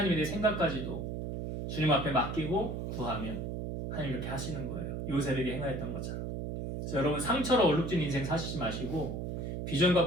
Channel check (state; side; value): noise; right; hum, 4 dB below the sound